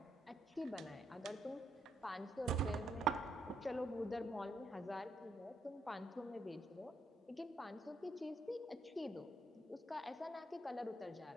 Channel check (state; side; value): normal; both; correlation 0.77